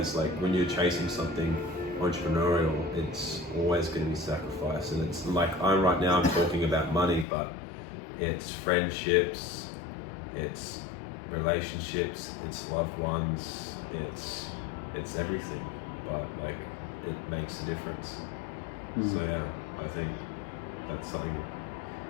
like, when you're chasing something entrepreneurial, it's always going to be sacrifice. And it's like, I'm talking about money, but it's friendships, it's relationships, it's loved ones, it's everything, but like, it makes a difference. So I think that's something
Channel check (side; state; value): right; drops out; at 7.2 s